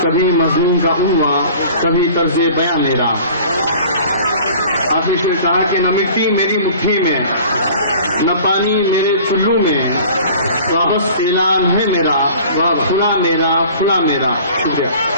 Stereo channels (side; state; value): both; inverted; correlation -0.45